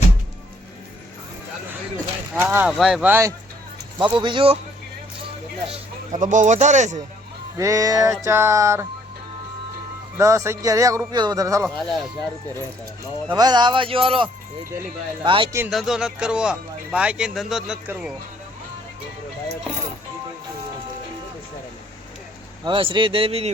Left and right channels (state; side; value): normal; both; correlation 0.64